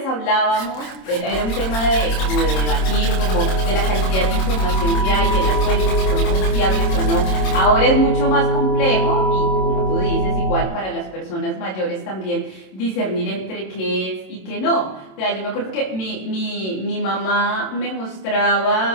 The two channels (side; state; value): right; late; 27 ms